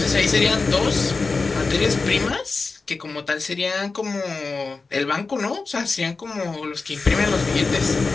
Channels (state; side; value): quieter; right; 4.1 dB